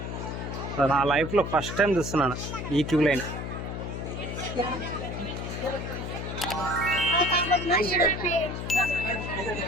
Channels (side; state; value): left; noise; hum, 5 dB below the sound